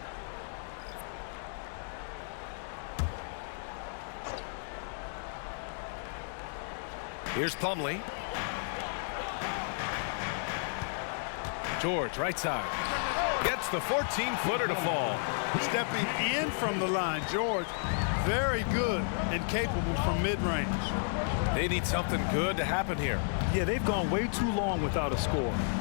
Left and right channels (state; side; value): silent; right; digital silence